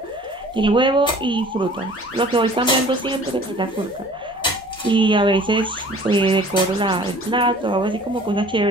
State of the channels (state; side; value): normal; both; correlation 0.49